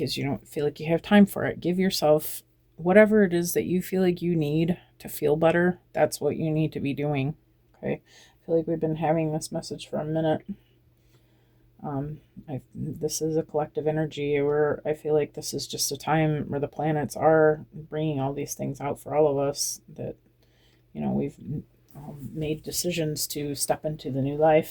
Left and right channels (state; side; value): identical; both; correlation 1.00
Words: you don't feel like you have time for it. Give yourself whatever it is that you feel like you need to feel better. That's what you need to be doing. Okay. I feel like we've been having this message for a minute. This is a collective energy where I feel like this is just a time where the planets are bringing all these things out for all of us, that we've made decisions to step into the new